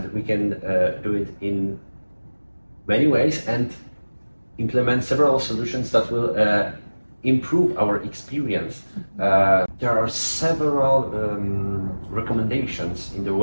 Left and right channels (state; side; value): inverted; both; correlation -1.00